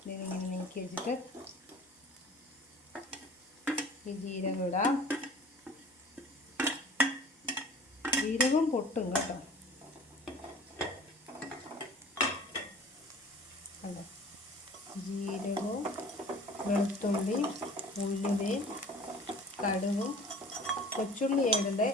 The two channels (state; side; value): normal; both; correlation 0.45